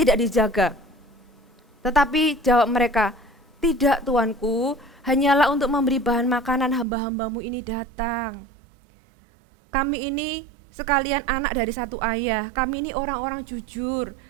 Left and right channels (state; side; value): drops out; left; at 6.9 s